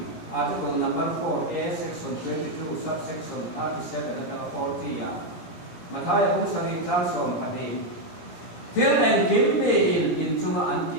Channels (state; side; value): late; right; 17 ms